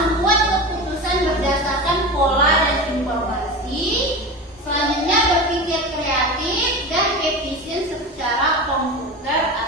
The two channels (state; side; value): normal; both; correlation 0.27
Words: keputusan berdasarkan pola dan informasi. Selanjutnya, berpikir kreatif dan efisien secara komputer